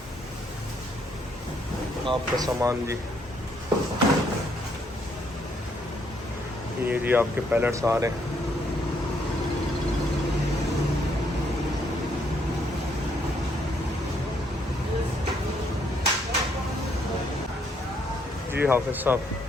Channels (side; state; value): both; normal; correlation 0.71